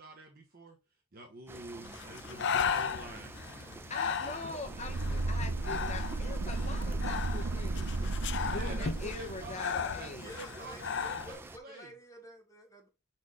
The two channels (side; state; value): both; normal; correlation 0.31